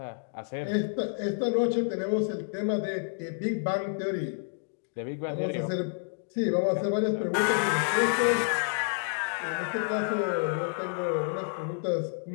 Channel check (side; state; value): right; silent; digital silence